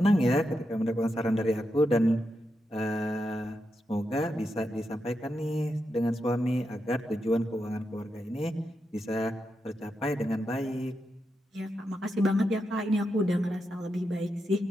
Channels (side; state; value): both; normal; correlation 0.86